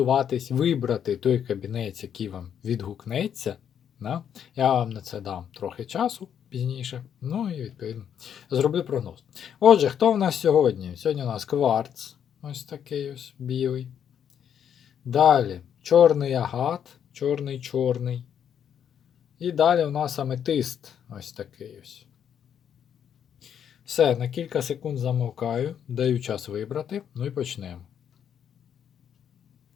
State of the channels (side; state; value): right; quieter; 8.7 dB